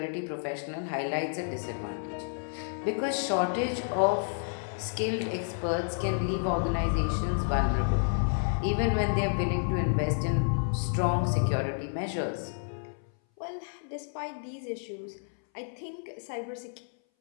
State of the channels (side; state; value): right; silent; 58 dB below the other